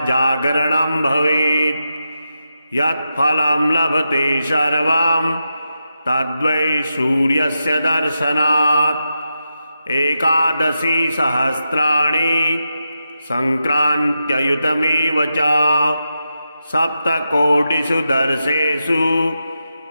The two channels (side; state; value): both; inverted; correlation -0.87